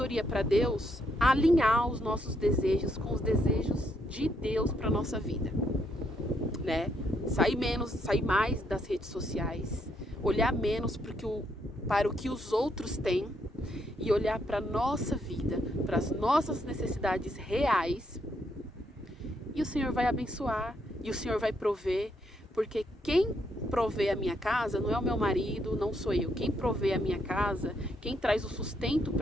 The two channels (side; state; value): both; normal; correlation 0.75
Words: para Deus, alinhar os nossos desejos com os desejos de Deus para nossa vida, né? Sair mais das redes sociais, olhar menos para o que os outros têm e olhar para a nossa vida, para as nossas necessidades reais, e o Senhor vai abençoar, e o Senhor vai prover, porque quem provê a minha casa não é o meu marido, não sou eu. Quem provê a minha casa, quem traz o sustento